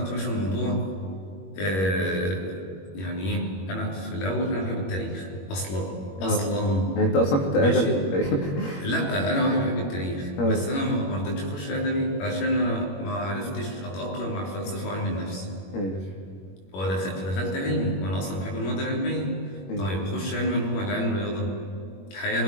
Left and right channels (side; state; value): right; late; 21 ms